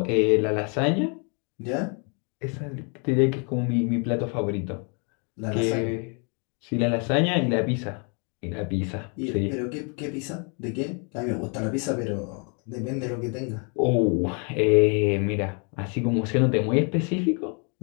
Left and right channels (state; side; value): quieter; right; 37.0 dB